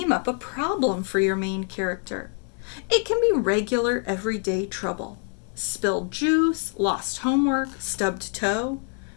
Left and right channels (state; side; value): quieter; right; 38.4 dB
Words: up a problem for your main character. It can be regular, everyday trouble: spilled juice, lost homework, stubbed toe,